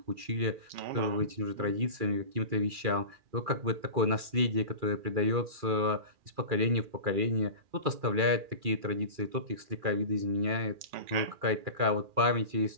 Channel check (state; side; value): late; left; 2.4 ms